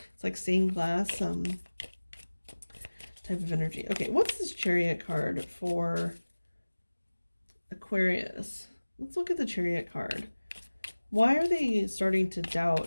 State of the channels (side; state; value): both; inverted; correlation -1.00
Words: It's like stained glass, type of energy. Okay, what's this Chariot card for Aquarius? Let's look at the Chariot card. Why are they starting to doubt